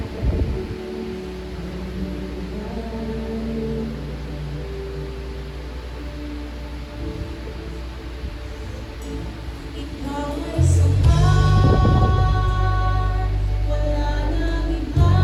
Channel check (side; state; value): both; identical; correlation 1.00